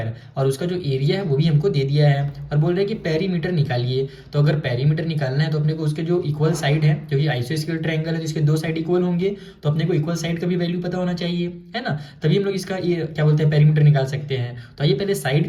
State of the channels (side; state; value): both; identical; correlation 1.00